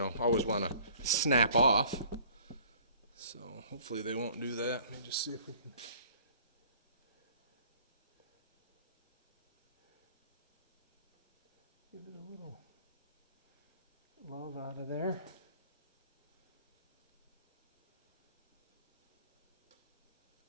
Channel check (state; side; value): inverted; both; correlation -0.53